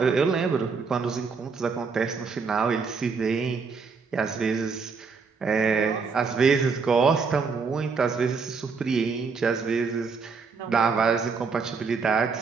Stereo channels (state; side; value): quieter; left; 5.0 dB